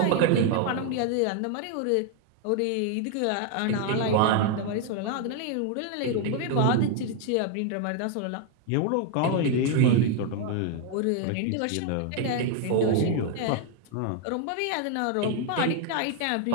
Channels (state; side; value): different; both; correlation 0.00